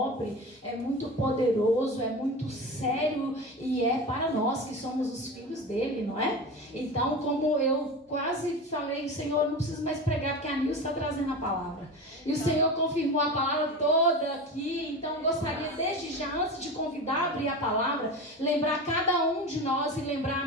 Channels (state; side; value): normal; both; correlation 0.28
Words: é muito poderoso, é muito sério e é para nós que somos os filhos dele, não é? Então, como eu quase falei, Senhor, eu não preciso mais pregar porque a Nilce está trazendo a palavra. E o Senhor confirmou a palavra toda aqui, então eu gostaria desde já, antes de convidar a abrir a palavra, lembrar cada um de nós e lembrar a